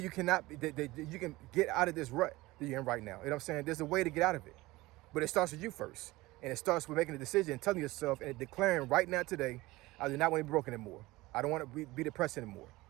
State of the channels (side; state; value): left; quieter; 19.8 dB